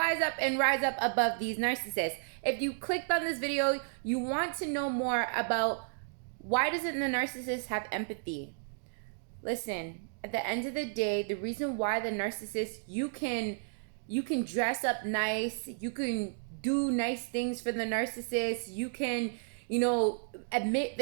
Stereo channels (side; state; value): left; silent; digital silence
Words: up and rise up above these narcissists. If you clicked on this video, you want to know more about why doesn't the narcissist have empathy? Listen, at the end of the day, the reason why the narcissist, you can dress up nice, you can do nice things for the narcissist, you can admit